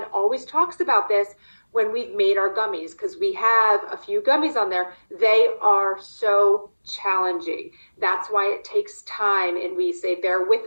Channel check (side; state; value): both; inverted; correlation -1.00